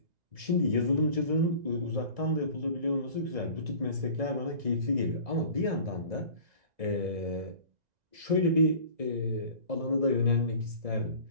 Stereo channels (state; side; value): late; left; 1.9 ms